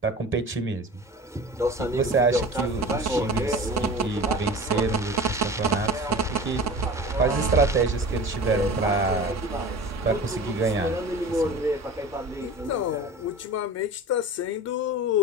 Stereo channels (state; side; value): normal; both; correlation 0.36